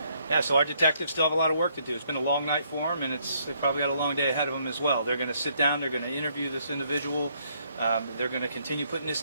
Yeah, so our detectives still have a lot of work to do. It's been a long night for them, and they've probably got a long day ahead of them as well. They're going to sit down, they're going to interview this individual, they're going to continue putting this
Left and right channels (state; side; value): inverted; both; correlation -0.70